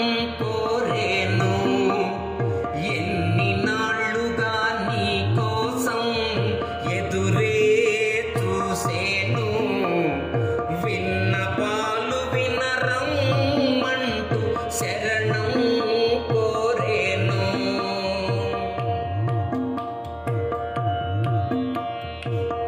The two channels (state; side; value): identical; both; correlation 1.00